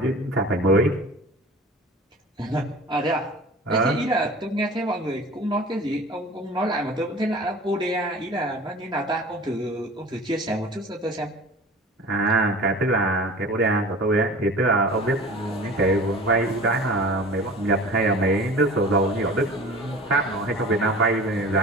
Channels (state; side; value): normal; both; correlation 0.40